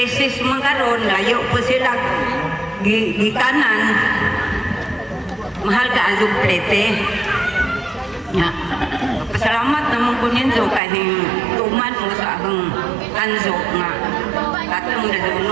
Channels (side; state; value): left; drops out; at 10.8 s